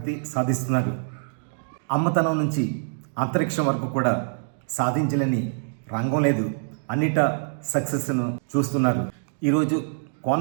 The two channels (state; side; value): silent; left; digital silence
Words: సాధిస్తున్నారు. అమ్మతనం నుంచి అంతరిక్షం వరకు కూడా సాధించలేని రంగం లేదు. అన్నిటా సక్సెస్ను చూస్తున్నారు. ఈరోజు